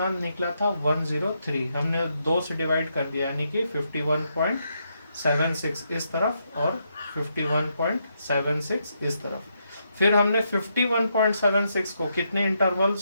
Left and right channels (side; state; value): both; inverted; correlation -0.80